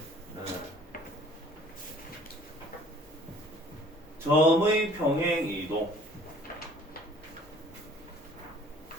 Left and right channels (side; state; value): both; normal; correlation 0.53